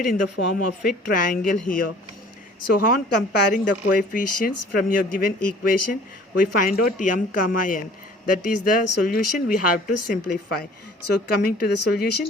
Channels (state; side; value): normal; both; correlation 0.50